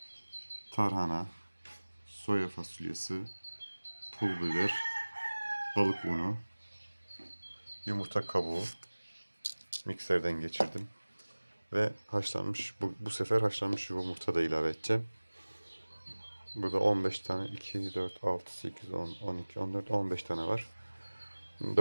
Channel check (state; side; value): inverted; both; correlation -1.00